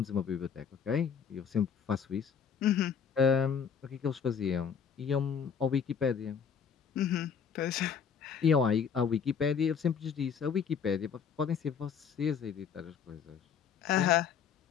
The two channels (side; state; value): right; quieter; 7.0 dB